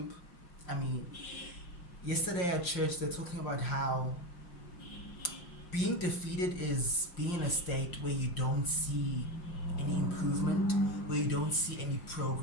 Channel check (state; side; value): late; right; 5.6 ms